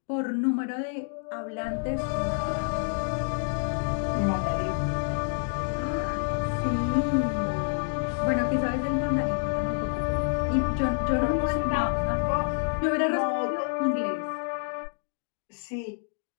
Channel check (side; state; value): right; silent; digital silence